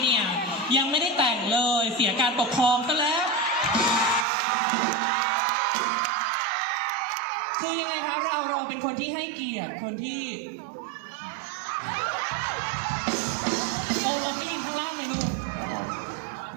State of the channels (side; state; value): left; drops out; at 4.2 s